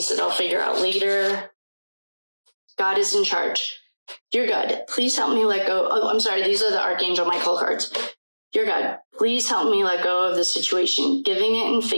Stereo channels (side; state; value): both; inverted; correlation -1.00